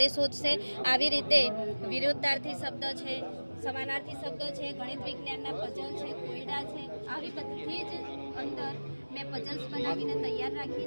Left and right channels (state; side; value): inverted; both; correlation -1.00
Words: શોધશે। આવી રીતે વિરુદ્ધાર્થી શબ્દ છે, સમાનાર્થી શબ્દ છે, ગણિત વિજ્ઞાનના પઝલ છે, કોયડા છે, આવી બધી જ અંદર મેં પઝલ્સ બનાવીને તૈયાર રાખી